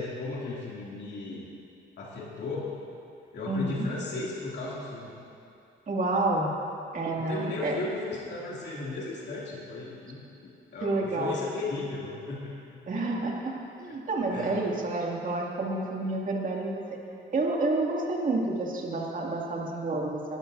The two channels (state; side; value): normal; both; correlation 0.45